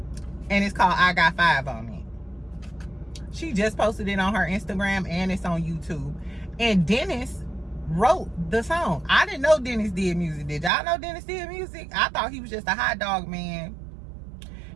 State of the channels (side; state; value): left; drops out; at 10.7 s